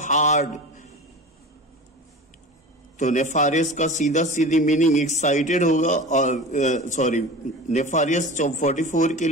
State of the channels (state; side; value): normal; both; correlation 0.33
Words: हार्ड, तो नेफारियस का सीधा सीधी मीनिंग एक्साइटेड होगा। और सॉरी, नेफारियस 44 के